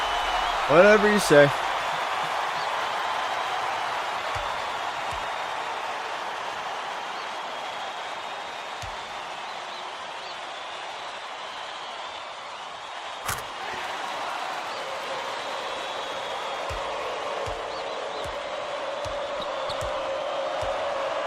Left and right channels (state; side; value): identical; both; correlation 1.00